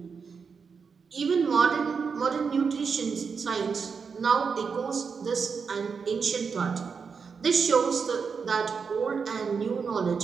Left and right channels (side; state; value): left; quieter; 5.7 dB